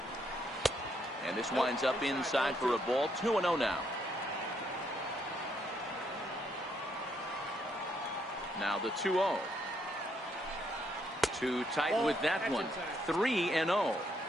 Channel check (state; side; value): normal; both; correlation 0.74